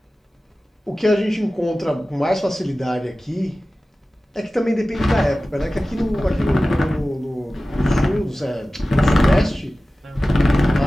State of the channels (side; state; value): both; normal; correlation 0.96